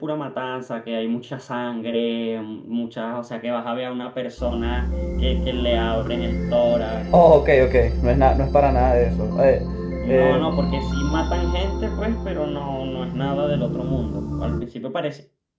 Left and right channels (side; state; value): both; identical; correlation 1.00